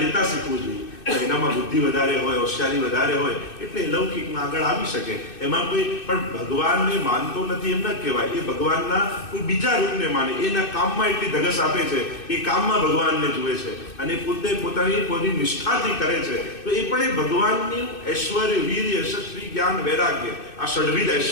લેતા શીખવું જોઈએ. એનામાં બુદ્ધિ વધારે હોય, હોશિયારી વધારે હોય એટલે લૌકિકમાં આગળ આવી શકે. એમાં કોઈ પણ ભગવાનને માનતો નથી એમ ન કહેવાય. એ ભગવાનના કોઈ બીજા રૂપને માને, એના કામમાં એટલી ધગસ આપે છે, એ કામમાં ભગવાનને જુએ છે અને પોતે પોતાની નિષ્ઠાથી કરે છે તો એ પણ એ ભગવાનની ઐશ્વર્ય, વીર, યશસ્વી, જ્ઞાન, વૈરાગ્ય આ ષડવિધ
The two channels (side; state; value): right; late; 2.6 ms